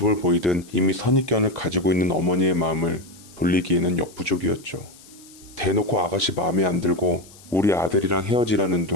보이든 이미 선입견을 가지고 있는 어머니의 마음을 돌리기에는 역부족이었죠. 대놓고 아가씨 마음에 안 들고 우리 아들이랑 헤어지라는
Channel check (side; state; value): left; noise; hiss, 23 dB below the sound